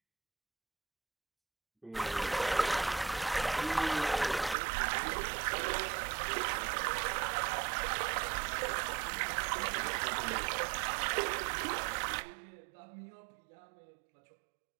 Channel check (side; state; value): left; drops out; at 4.5 s